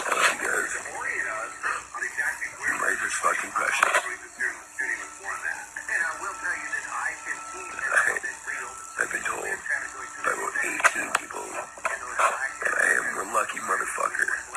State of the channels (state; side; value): identical; both; correlation 1.00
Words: I love you guys. Life is fucking precious. I've been told by about 18 people that I am the lucky motherfucker.